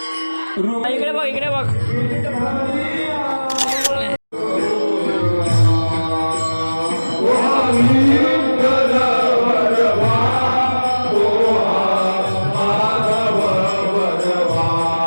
इकडे बघ. इकडे बघ.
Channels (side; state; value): both; inverted; correlation -1.00